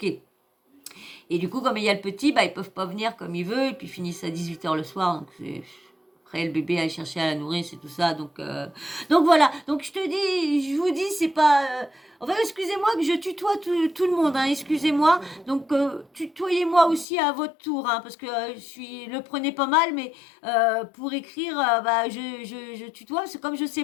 Et du coup, comme il y a le petit, bah, ils peuvent pas venir comme ils veulent, et puis ils finissent à 18h le soir, donc c'est... Après, le bébé à chercher à la nourrir, c'est tout ça. Donc voilà. Donc je vous dis, c'est pas. Enfin, excusez-moi que je tutoie tout le monde. Hein, excusez-moi. Donc tutoyez-moi aussi à votre tour, hein, parce que le prenez pas mal, mais pour écrire, bah, je tutoie. C'est comme je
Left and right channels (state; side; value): drops out; right; at 17.1 s